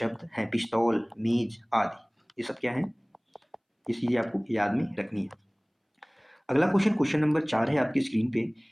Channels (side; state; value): both; identical; correlation 1.00